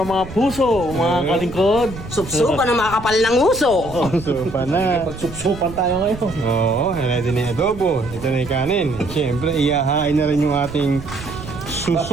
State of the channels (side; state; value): right; noise; rumble, 13 dB below the sound